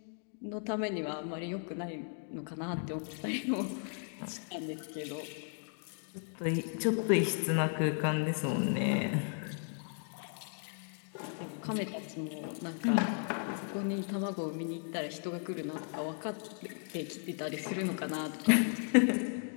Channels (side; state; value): right; silent; 54 dB below the other